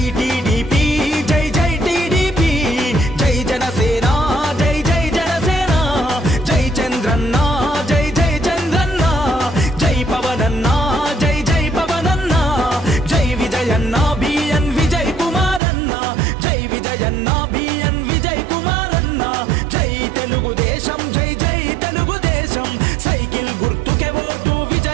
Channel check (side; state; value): left; drops out; at 15.6 s